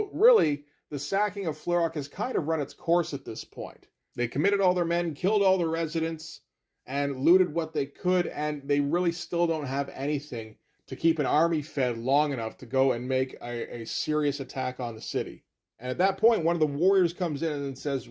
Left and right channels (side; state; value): both; identical; correlation 1.00